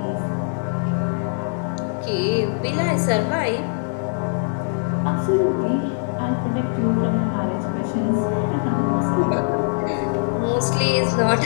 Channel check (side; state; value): right; silent; digital silence